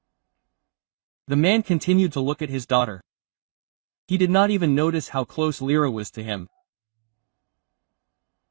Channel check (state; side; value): silent; left; 56 dB below the other